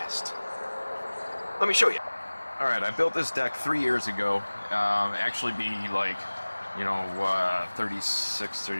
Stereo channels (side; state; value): both; inverted; correlation -1.00